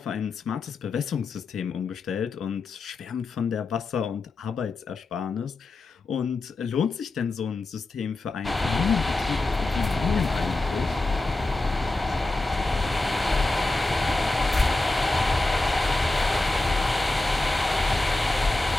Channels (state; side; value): quieter; right; 3.1 dB